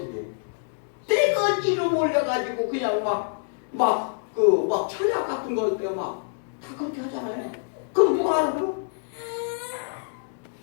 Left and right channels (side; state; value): right; silent; digital silence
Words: 해? 떼거지로 몰려가지고 그냥 막 철학 같은 거 할 때 막 다 그렇게 하잖아요. 그럼 누가 알아들어?